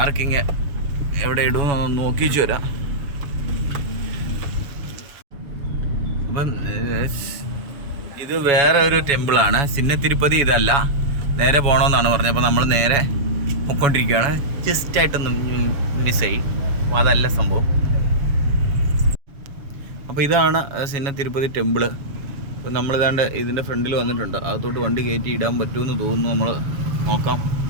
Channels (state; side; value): late; left; 7.1 ms